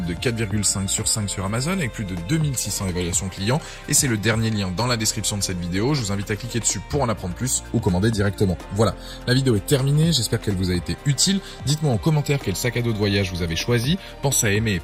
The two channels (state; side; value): identical; both; correlation 1.00